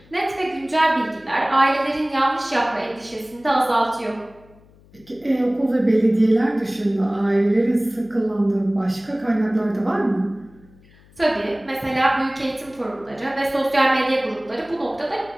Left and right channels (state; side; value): noise; left; hum, 27 dB below the sound